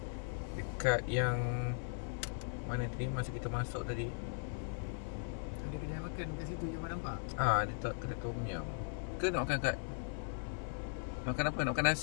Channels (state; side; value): silent; right; 52 dB below the other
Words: Dekat yang mana tadi masa kita masuk tadi. Ada kedai makan kat situ yang nampak. Ada kedai tom yum. Ke nak makan kat makan apa? Nak makan